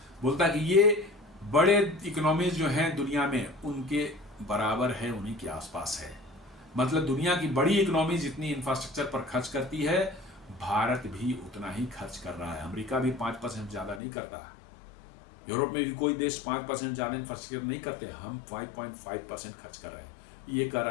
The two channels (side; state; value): right; drops out; at 14.0 s